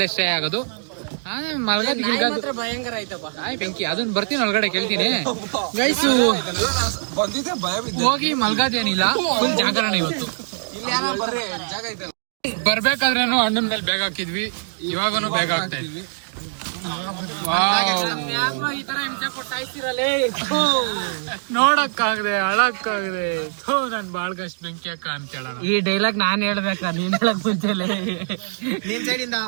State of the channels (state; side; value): silent; left; digital silence